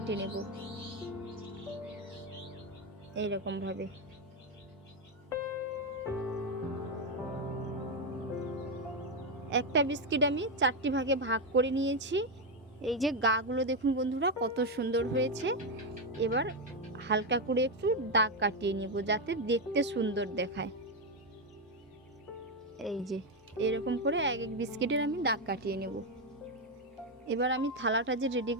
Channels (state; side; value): normal; both; correlation 0.06